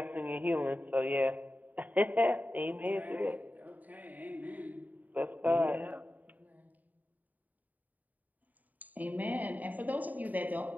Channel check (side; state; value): left; late; 0.080 ms